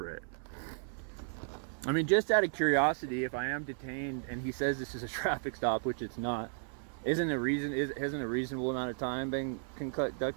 I mean, just out of curiosity, if I am detained and he says this is a traffic stop, which it's not, hasn't a reasonable amount of time been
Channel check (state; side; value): silent; left; 55 dB below the other